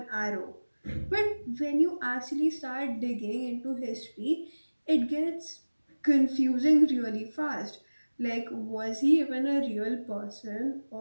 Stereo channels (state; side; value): inverted; both; correlation -1.00